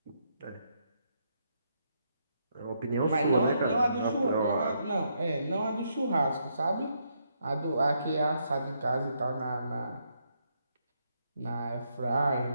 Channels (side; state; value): both; inverted; correlation -0.77